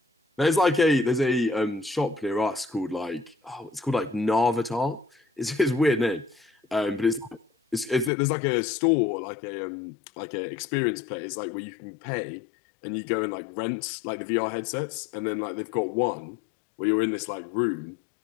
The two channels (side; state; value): right; drops out; at 8.1 s